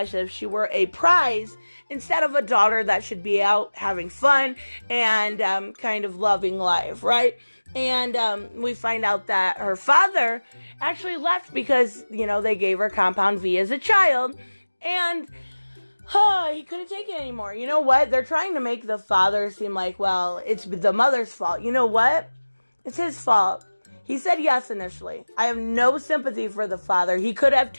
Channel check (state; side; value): inverted; both; correlation -1.00